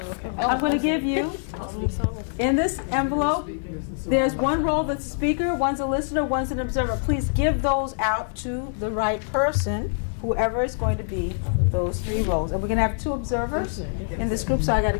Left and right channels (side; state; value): right; silent; 62 dB below the other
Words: I'm going to give you, in this envelope, there's one role that's a speaker, one's a listener, one's an observer. Please give those out to the right person, whoever is going to be those 3 roles. And we're going to have 2 observers in this group, so I got to